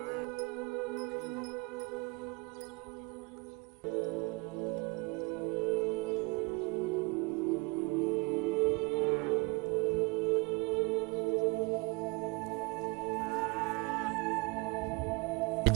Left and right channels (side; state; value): left; quieter; 27.7 dB